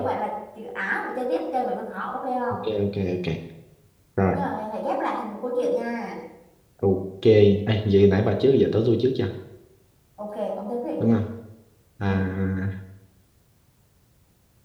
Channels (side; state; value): both; identical; correlation 1.00